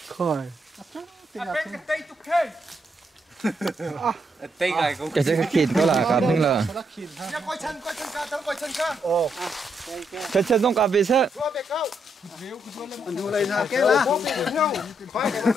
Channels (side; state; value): both; normal; correlation 0.78